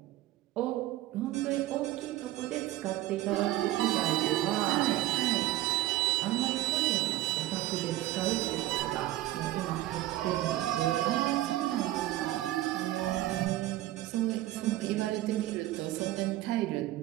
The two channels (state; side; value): quieter; left; 15.6 dB